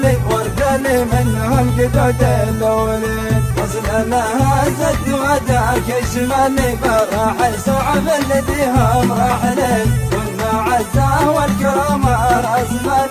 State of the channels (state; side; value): identical; both; correlation 1.00